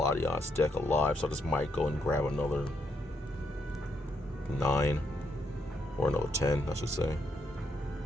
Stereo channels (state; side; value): normal; both; correlation 0.77